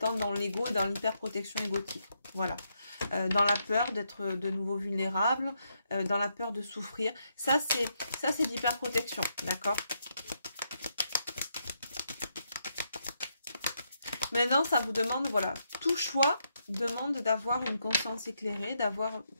dans l'ego et dans l'hyperprotection égotique. Voilà. Dans la peur d'être de nouveau vulnérable, dans la peur de souffrir. Ça, c'est l'hyperprotection, d'accord? Maintenant, ça vous demande, voilà, tout choix demande d'avoir une conscience éclairée, d'avoir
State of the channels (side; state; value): both; inverted; correlation -0.79